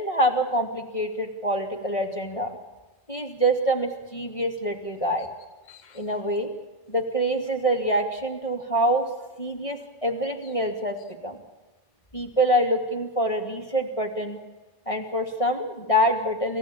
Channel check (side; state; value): right; late; 1.6 ms